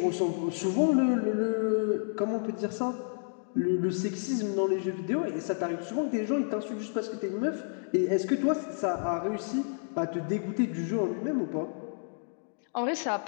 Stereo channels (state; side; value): silent; right; digital silence